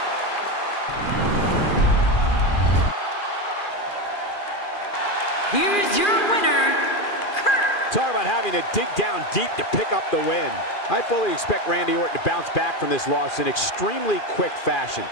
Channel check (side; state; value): right; late; 2.4 ms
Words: Here's your winner, Kurt. Talk about having to dig down deep to pick up the win. I fully expect Randy Orton to bounce back from this loss in extremely quick fashion.